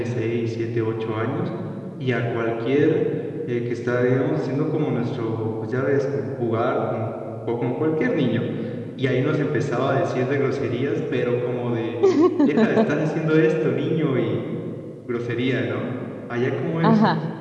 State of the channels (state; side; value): identical; both; correlation 1.00